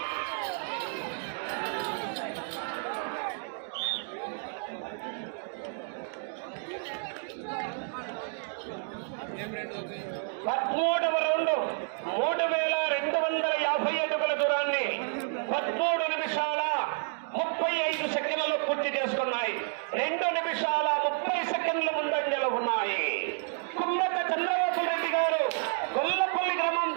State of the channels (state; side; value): silent; left; 58 dB below the other